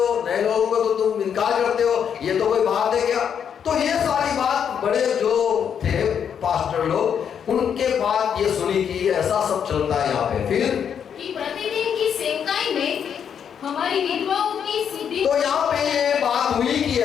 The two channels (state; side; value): quieter; right; 7.9 dB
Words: नए लोगों को तो तुम इनकार करते हो, ये तो कोई बात है क्या? तो ये सारी बात बड़े जो थे पास्टर लोग, उनके बाद ये सुनी कि ऐसा सब चलता है यहाँ पे। फिर कि प्रतिदिन की सेवकाई में हमारी विधवाओं की शुद्धि। तो यहाँ पे ये बात हुई कि